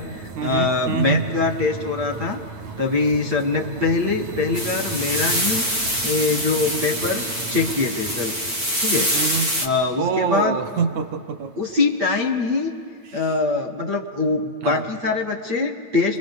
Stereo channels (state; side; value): late; left; 9.0 ms